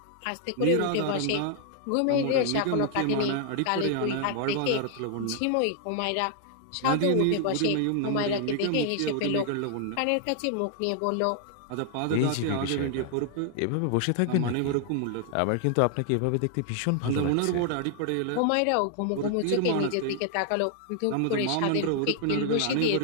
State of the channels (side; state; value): both; different; correlation 0.00